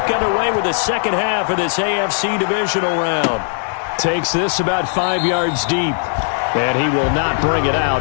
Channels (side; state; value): right; silent; digital silence